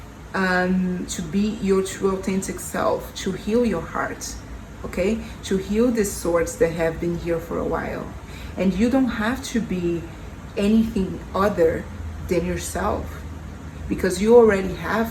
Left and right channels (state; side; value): identical; both; correlation 1.00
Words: to be your true authentic self, to heal your heart, okay, to heal the swords that have been here for a while. And you don't have to be anything other than yourself. because you already